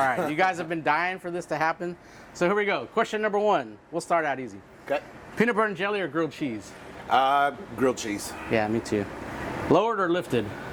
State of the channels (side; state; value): both; identical; correlation 1.00